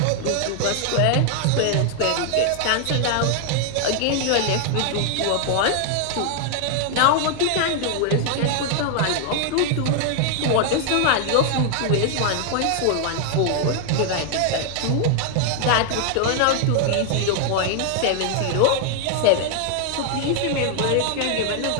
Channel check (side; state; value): both; different; correlation 0.00